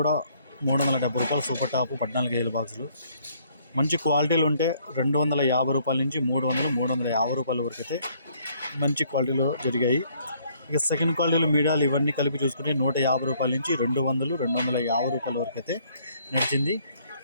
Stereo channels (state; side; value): inverted; both; correlation -0.64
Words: 370 రూపాయలు సూపర్ టాప్ 14 కేజీల బాక్సులు. మంచి క్వాలిటీలు ఉంటే 250 రూపాయల నుంచి 300, 350 రూపాయల వరకు అయితే మంచి క్వాలిటీలో జరిగాయి. ఇక సెకండ్ క్వాలిటీలు మీడియాలు ఇవన్నీ కలిపి చూసుకుంటే 150 రూపాయల నుంచి 200, 250 రూపాయల వరకు అయితే నడిచింది.